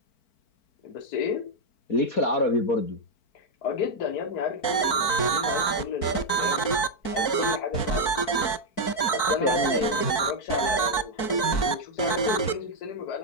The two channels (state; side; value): late; right; 4.5 ms